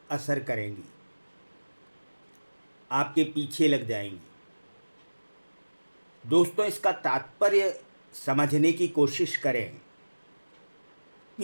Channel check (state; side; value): inverted; both; correlation -1.00